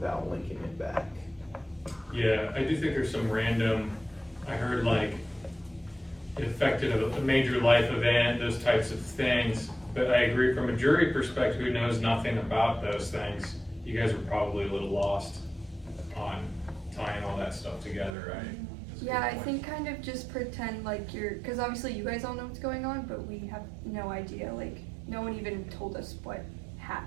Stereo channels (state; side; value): drops out; left; at 18.1 s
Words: linking it back. Yeah, I do think there's some random, I heard like, it affected a major life event, those types of things. But I agree from a jury perspective who knows nothing about those things, you guys were probably a little lost on tying all that stuff together, right? That's a Yeah, good I point. think kind of just pretend like because obviously you guys all know what's going on, but we have no idea. Like, no one even told us what